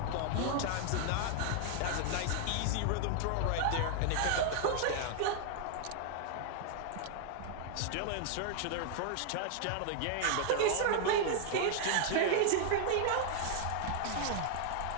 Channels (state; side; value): different; both; correlation 0.00